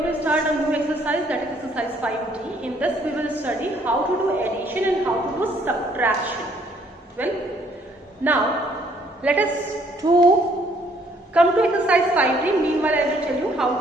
to start a new exercise, that is exercise 5D. In this we will study how to do addition and how to do subtraction. Well, now let us come to exercise 5D. Meanwhile I will tell you how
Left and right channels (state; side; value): normal; both; correlation 0.64